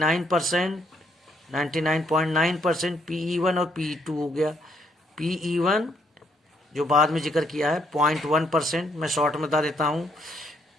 99.9% PE1 और PE2 हो गया। PE1 जो बाद में जिक्र किया है 0.1%, मैं शॉर्ट में बता देता हूँ।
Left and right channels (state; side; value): normal; both; correlation 0.71